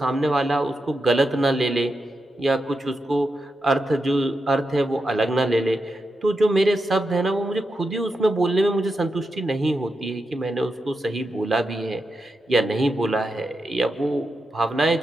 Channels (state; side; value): normal; both; correlation 0.87